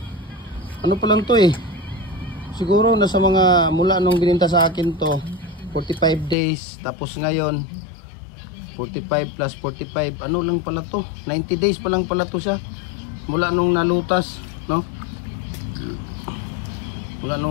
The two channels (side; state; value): right; drops out; at 6.4 s